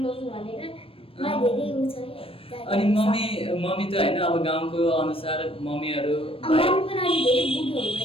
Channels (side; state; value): right; late; 0.27 ms